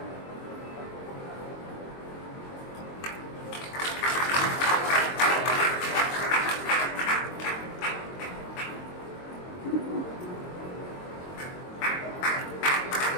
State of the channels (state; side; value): late; right; 22 ms